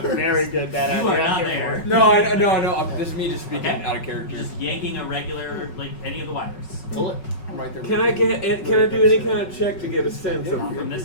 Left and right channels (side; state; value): right; late; 5.4 ms